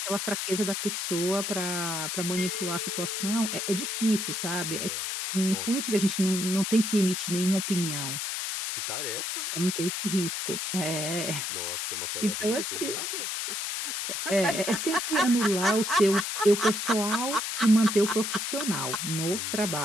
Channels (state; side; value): noise; left; hiss, 2 dB below the sound